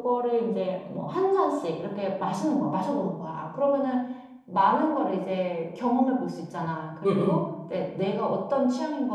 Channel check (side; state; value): both; identical; correlation 1.00